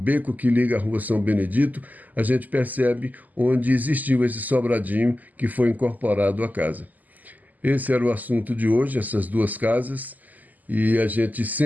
que liga a rua São Benedito, a gente percebe onde existiu esse sobradinho que foi incorporado à casa. Esse era o assunto de hoje, essas duas casas, e a gente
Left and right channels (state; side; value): late; left; 0.081 ms